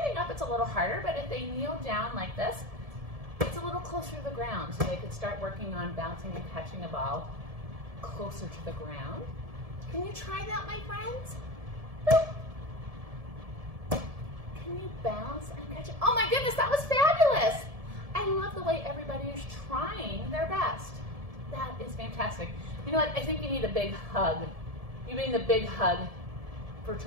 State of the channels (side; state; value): left; late; 1.7 ms